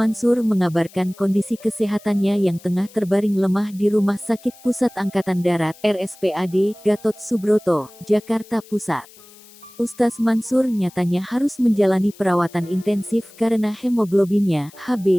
mengabarkan kondisi kesehatannya yang tengah terbaring lemah di Rumah Sakit Pusat Angkatan Darat (RSPAD) Gatot Subroto, Jakarta Pusat. Ustaz Mansur nyatanya harus menjalani perawatan intensif karena hemoglobinnya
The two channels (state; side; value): noise; left; hiss, 23 dB below the sound